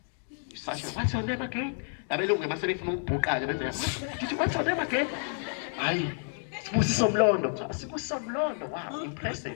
you're such a what's your name again abelungu mase befuna ukubhuqa benza did you what's your name again hayi Sibusiso Mlondo, wow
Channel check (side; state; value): right; silent; 55 dB below the other